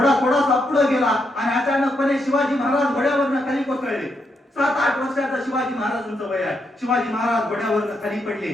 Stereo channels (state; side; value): normal; both; correlation 0.80